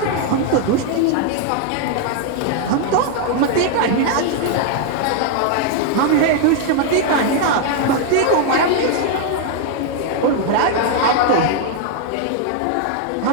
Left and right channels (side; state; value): both; different; correlation 0.00